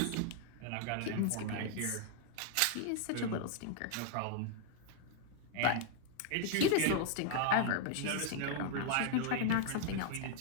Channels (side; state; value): both; different; correlation 0.00